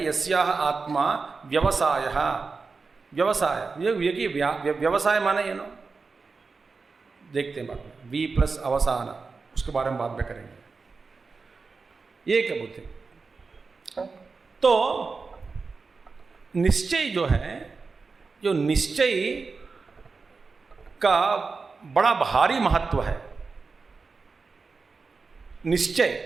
यस्याः आत्मा व्यवसाय, व्यवसाय ये व्यवसाय माने ये ना, देखते हैं बाद में, वी प्लस अवसान, उसके बारे में बाद में करेंगे। ये क्या बुद्धि? तो निश्चय जो है, जो निश्चय का बड़ा भारी महत्व है।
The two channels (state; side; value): quieter; left; 4.4 dB